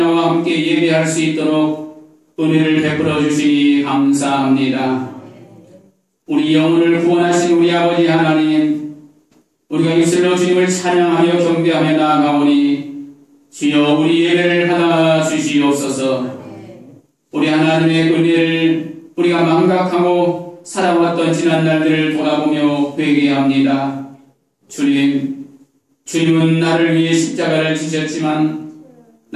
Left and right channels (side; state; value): both; identical; correlation 1.00